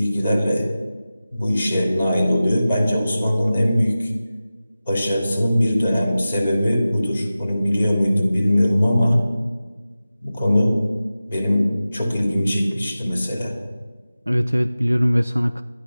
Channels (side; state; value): both; inverted; correlation -0.95